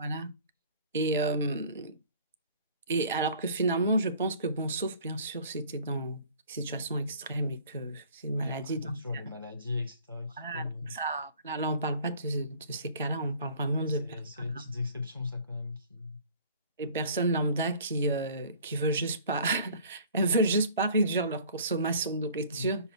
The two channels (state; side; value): inverted; both; correlation -0.49